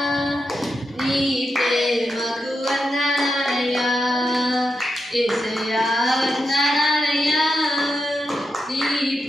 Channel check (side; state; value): both; normal; correlation 0.86